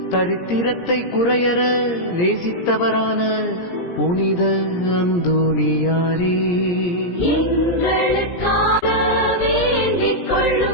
தரித்திரத்தை குறையற நேசித்தவரான புனித அந்தோனியாரே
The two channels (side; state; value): right; late; 17 ms